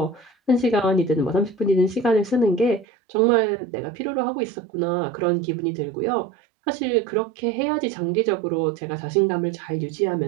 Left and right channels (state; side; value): drops out; left; at 2.9 s